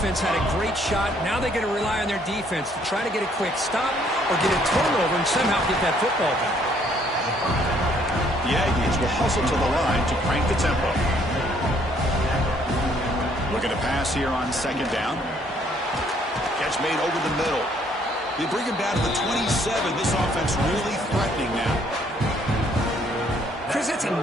had a great shot. Now they're going to rely on their defense to try to get a quick stop or get a turnover and somehow get that football back. The Aggies will hustle to the line to crank the tempo. Looking to pass here on 2nd down. Catch made over the middle. They bring him down to the 27. This offense really threatening now. Chris, that's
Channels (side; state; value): both; normal; correlation 0.65